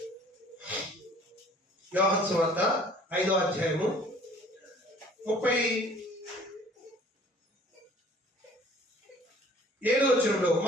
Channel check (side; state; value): both; normal; correlation 0.52